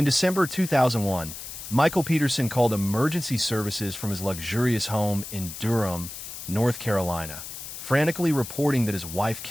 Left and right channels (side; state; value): left; noise; hiss, 10 dB below the sound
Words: December 2001, Michael Peterson called emergency services from his luxurious home in Durham, North Carolina, frantically reporting that his wife